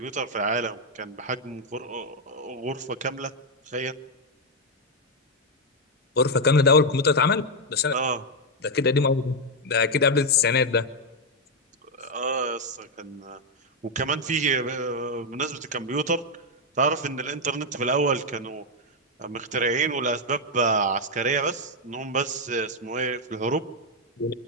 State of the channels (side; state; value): both; normal; correlation 0.01